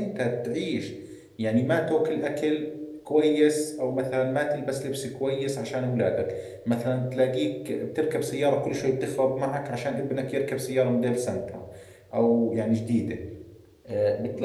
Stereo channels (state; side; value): identical; both; correlation 1.00